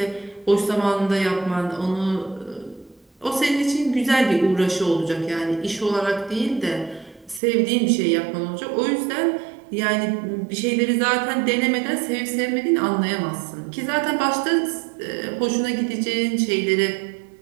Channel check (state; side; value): drops out; left; at 7.4 s